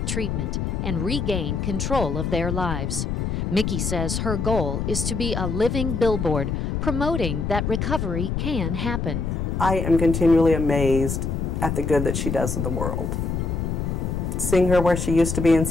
treatment, and regain control of their lives. Mickie says her goal is to be a living billboard promoting that recovery can happen. I am continually amazed at the good that she does in the world. Seeing her where she used to be and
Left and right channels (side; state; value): left; noise; rumble, 1 dB below the sound